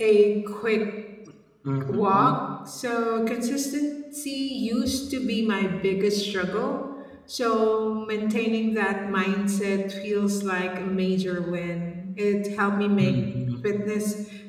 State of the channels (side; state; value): both; identical; correlation 1.00